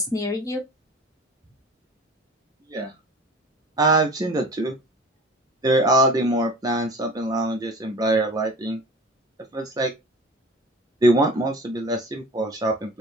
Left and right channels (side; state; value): both; normal; correlation 0.39